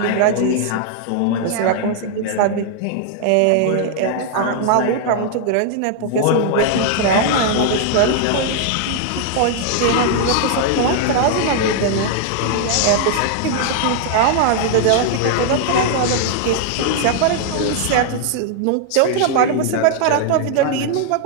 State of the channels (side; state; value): both; different; correlation 0.00